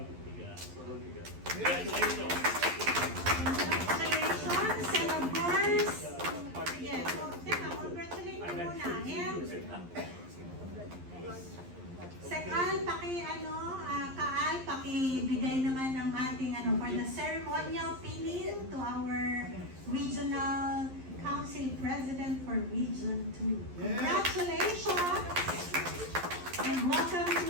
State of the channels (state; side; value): late; left; 11 ms